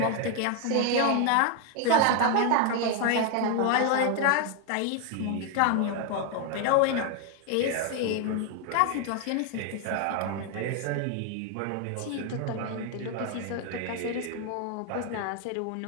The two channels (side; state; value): both; different; correlation 0.00